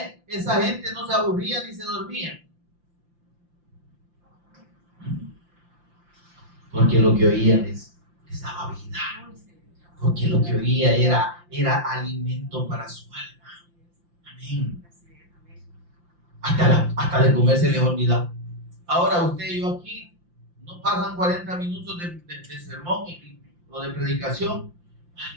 esa gente no se aburría ni se dormía? Porque lo que oían les daba vida. Porque lo que oía era alimento para su alma. Amén. Hasta de comer se les olvidaba. Ahora usted y yo aquí no pasan 40 minutos de sermón o de predicación.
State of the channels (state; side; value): late; left; 5.8 ms